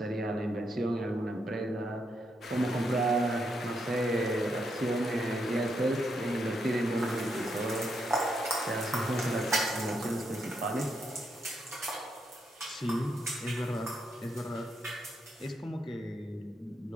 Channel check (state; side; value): normal; both; correlation 0.79